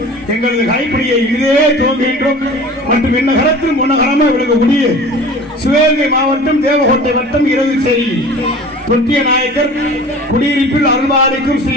எங்களது கைப்பிடியை இதே துவங்குகின்றோம். மற்றும் என்ன கரத்தில் முன்னகரமா விளக்கக்கூடிய சிவகங்கை மாவட்டம் தேவகோட்டை வட்டம் இரவுச்சேரி தொட்டிய நாயக்கர் குடியிருப்பில் அருள்பாலிக்கும்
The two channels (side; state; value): both; normal; correlation 0.41